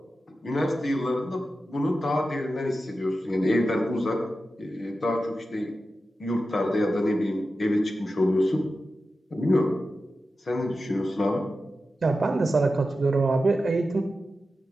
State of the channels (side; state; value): both; normal; correlation 0.92